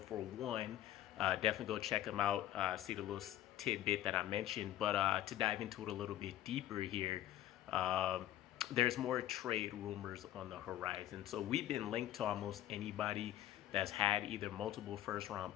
one, definitely go check him out. See the little tidbit that I mentioned. But to dive into it a little bit deeper here, there's more trade rumors on the horizon. So we've been linked to almost anybody that's had either multiple first-round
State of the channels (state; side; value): quieter; right; 13.1 dB